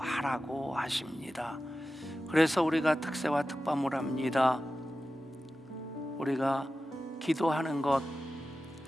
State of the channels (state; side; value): normal; both; correlation 0.94